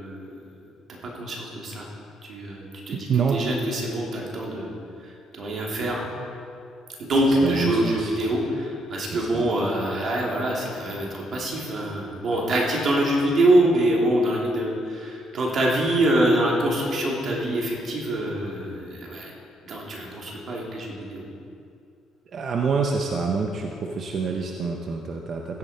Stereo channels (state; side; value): normal; both; correlation 0.74